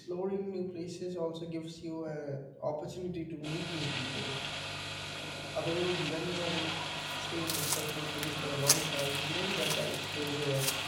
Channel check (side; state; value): both; identical; correlation 1.00